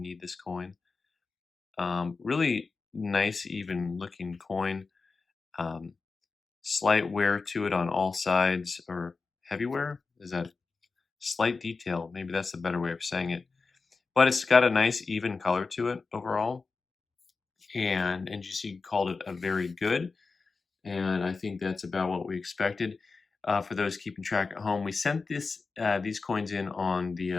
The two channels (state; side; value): quieter; right; 4.4 dB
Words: this coin. Really nice, even looking coin. Um, Slight wear to it on all sides, or heavy wear? Is that slight detail? Maybe that's the better way of saying it. But it's got a nice even color to it overall. And NGC called it a very good. And I think that's about what we expected. For those keeping track at home, we sent these coins in on